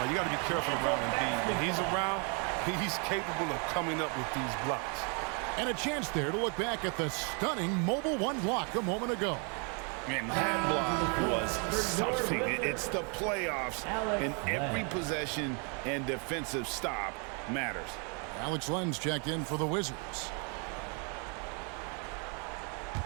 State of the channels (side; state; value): left; quieter; 36.6 dB